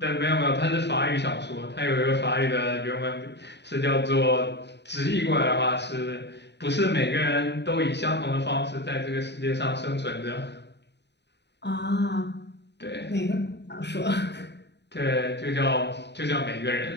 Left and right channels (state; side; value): late; right; 0.50 ms